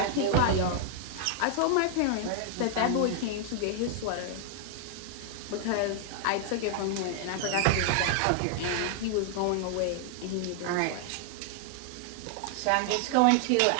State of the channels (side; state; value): both; different; correlation 0.00